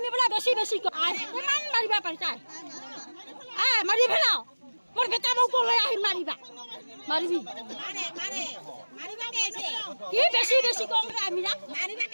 বোলে বেছি বেছি কিমান মাৰিবা পাৰিছা মাৰি পেলাও মোৰ বেটা মোক লৈ আহিম মাৰিবা মাৰিবি কি বেছি বেছি কম আমি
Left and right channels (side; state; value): both; inverted; correlation -1.00